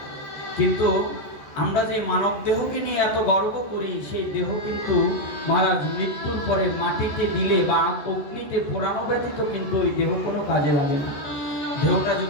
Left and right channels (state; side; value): late; right; 14 ms